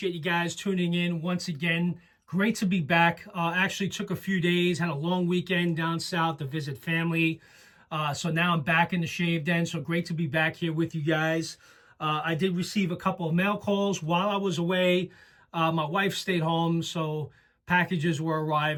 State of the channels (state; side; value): identical; both; correlation 1.00